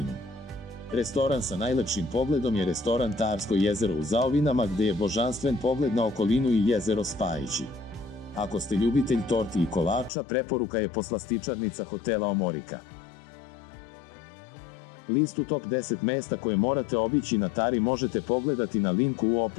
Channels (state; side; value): drops out; right; at 10.1 s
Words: Restoran sa najlepšim pogledom je restoran Tarsko jezero u Zaovinama, gde je božanstven pogled na okolinu i jezero Spajići. Ako ste ljubitelj torti i kolača, preporuka je poslastičarnica hotela Omorika. Listu top 10 mesta koje morate obići na Tari možete pogledati na linku u